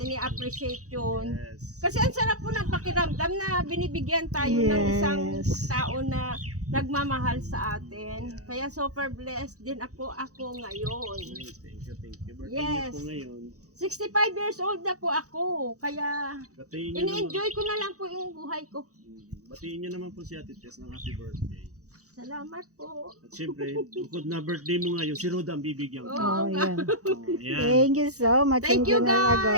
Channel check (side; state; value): left; late; 0.66 ms